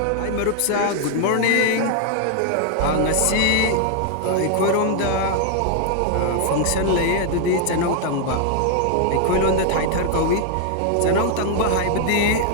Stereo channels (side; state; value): both; different; correlation 0.00